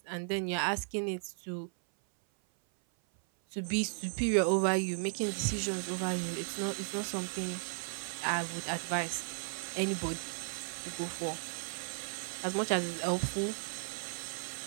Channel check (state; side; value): silent; left; 54 dB below the other